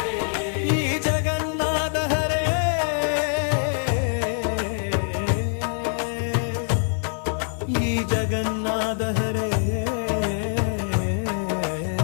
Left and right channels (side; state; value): right; silent; 56 dB below the other